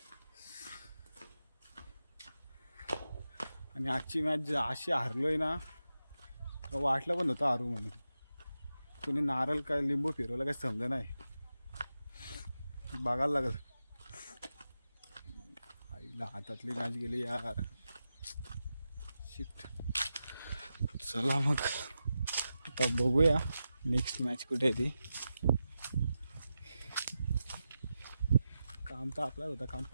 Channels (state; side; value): inverted; both; correlation -0.90